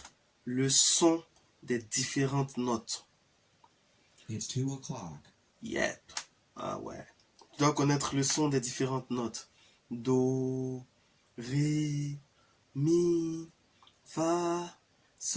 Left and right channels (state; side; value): identical; both; correlation 1.00